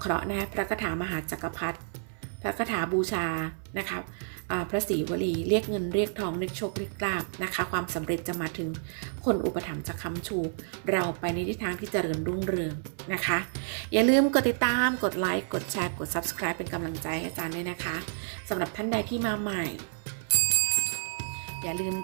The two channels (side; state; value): left; silent; 58 dB below the other